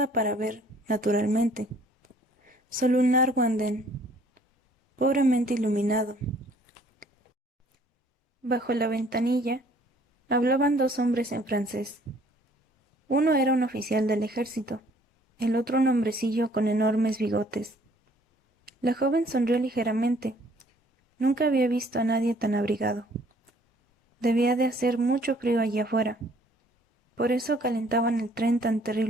para ver, naturalmente. Solo un largo andén, pobremente iluminado. Bajo la ventanilla hablaban 2 hombres en francés. Uno era un oficial del ejército, el otro un hombrecillo con enormes bigotes. La joven sonrió ligeramente. Nunca había visto a nadie tan abrigado. Debía de hacer mucho frío allí afuera. Por eso calentaban el tren tan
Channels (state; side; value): normal; both; correlation 0.59